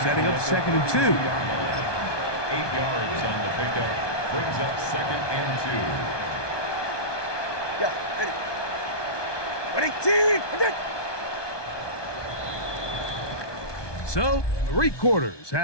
Setting up 2nd and 2. 8 yards on the pickup. Brings up 2nd and 2. Yeah, ready? Ready, team! So, 3 quarters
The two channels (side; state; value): right; late; 1.2 ms